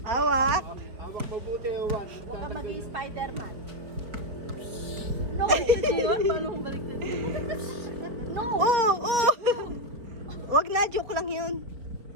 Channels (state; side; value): late; left; 4.5 ms